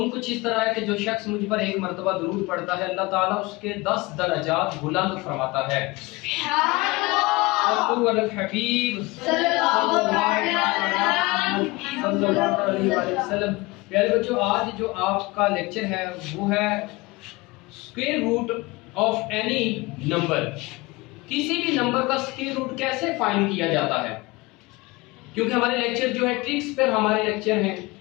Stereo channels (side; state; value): right; quieter; 22.9 dB